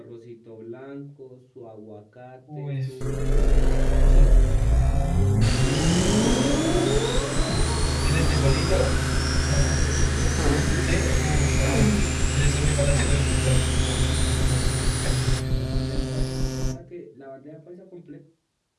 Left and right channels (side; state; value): both; identical; correlation 1.00